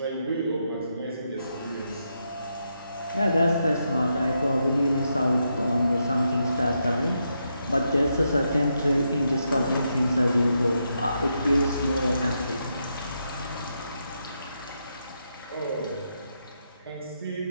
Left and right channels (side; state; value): both; inverted; correlation -0.82